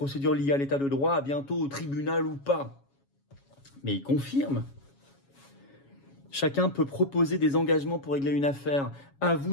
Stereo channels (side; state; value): right; late; 7.2 ms